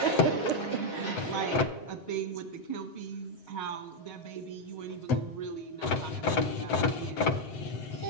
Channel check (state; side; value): late; right; 7.9 ms